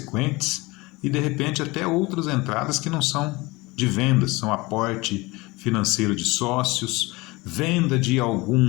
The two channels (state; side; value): quieter; right; 22.8 dB